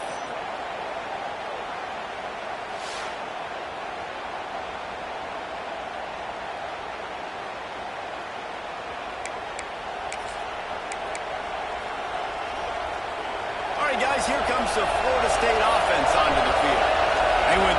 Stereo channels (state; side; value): identical; both; correlation 1.00